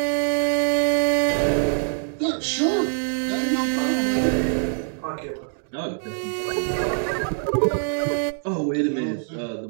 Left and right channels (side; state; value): left; silent; digital silence